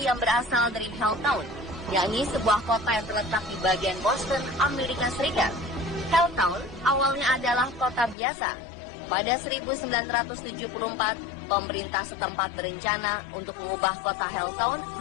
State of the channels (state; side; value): drops out; right; at 8.2 s